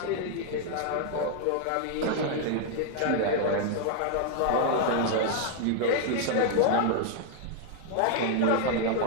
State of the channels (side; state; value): both; different; correlation 0.00